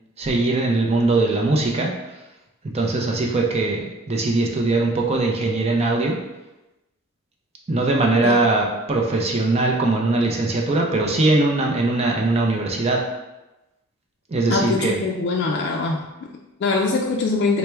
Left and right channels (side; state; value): both; normal; correlation 0.50